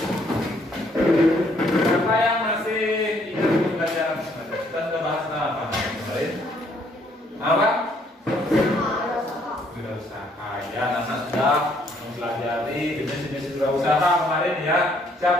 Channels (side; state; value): both; normal; correlation 0.67